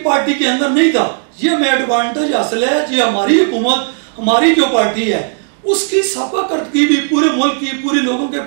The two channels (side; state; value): left; silent; digital silence